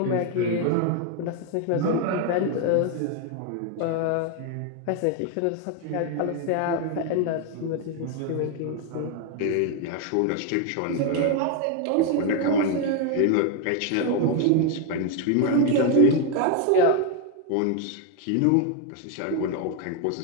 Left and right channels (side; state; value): both; different; correlation 0.01